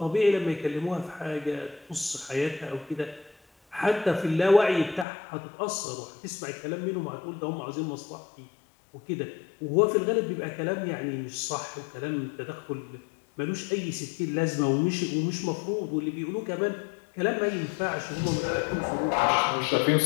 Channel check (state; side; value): drops out; right; at 5.1 s